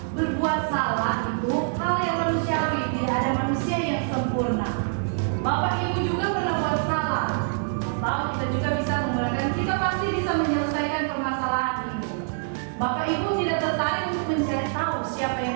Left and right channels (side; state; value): left; silent; digital silence